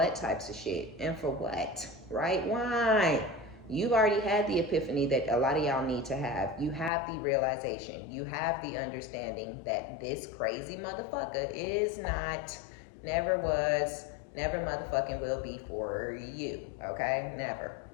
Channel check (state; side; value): drops out; right; at 6.9 s